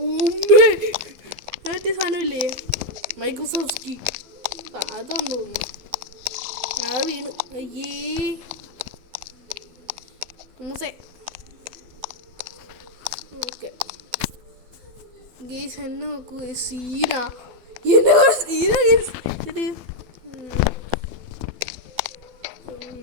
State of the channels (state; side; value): late; left; 12 ms